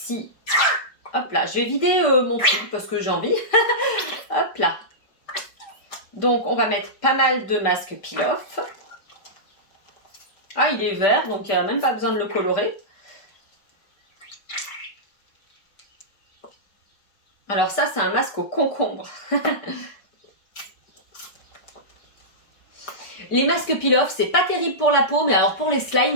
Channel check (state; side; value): late; right; 5.1 ms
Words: hop là, je vais vider mon truc parce que j'ai envie. Hop là. Donc on va mettre pas mal de masque peel-off. Ah, il est vert, donc il n'y a même pas besoin de le colorer. Alors ça, c'est un masque au concombre. Les masques peel-off, c'est pas terrible pour la peau, mais alors pour les